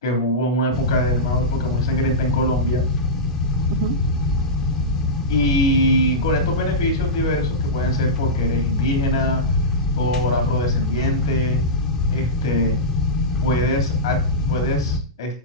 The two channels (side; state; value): both; normal; correlation -0.13